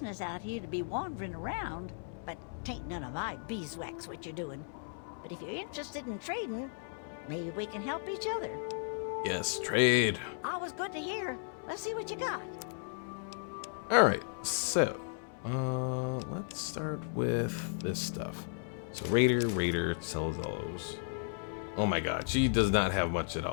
out here to be wandering around, but tain't none of my beeswax what you're doing. But if you're interested in trading, maybe we can help each other. Yes, trade. Always good to hear. Let's see what you got. Alright, so, let's start with this stuff. So Raider, sell those. Oh my god, she does not have much at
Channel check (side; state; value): right; silent; 54 dB below the other